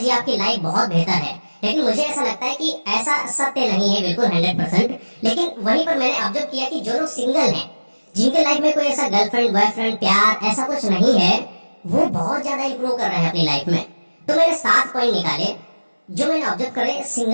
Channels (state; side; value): inverted; both; correlation -1.00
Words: आपकी लाइफ बहुत बेहतर है। लेकिन मुझे ऐसा लगता है कि ऐसा सत्य नहीं है, बिल्कुल 100%। लेकिन वहीं पर मैंने ऑब्जर्व किया कि जो लोग सिंगल हैं, जिनके लाइफ में कोई ऐसा गर्लफ्रेंड बॉयफ्रेंड प्यार ऐसा कुछ नहीं है, वो बहुत ज्यादा इंप्रूव कर रहे हैं अपनी लाइफ में। तो मैंने 7 पॉइंट निकाले जो मैंने ऑब्जर्व करे